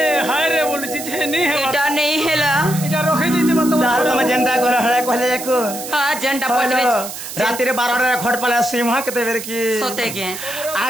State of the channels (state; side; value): noise; right; hiss, 9 dB below the sound